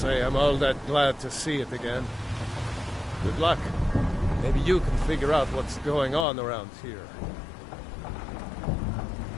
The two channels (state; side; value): drops out; right; at 6.2 s